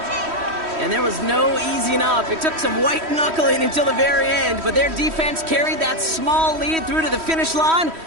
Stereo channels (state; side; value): late; left; 3.1 ms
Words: And there was no easing up. It took some white knuckling until the very end, but their defense carried that small lead through to the finish line